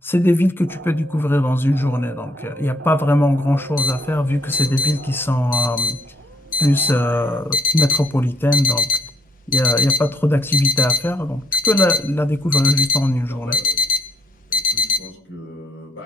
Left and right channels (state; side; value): normal; both; correlation 0.70